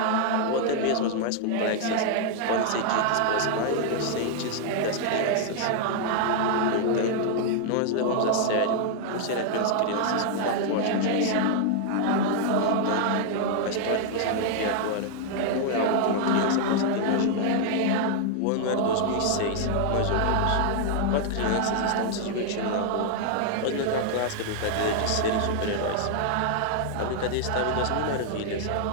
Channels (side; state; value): both; different; correlation -0.01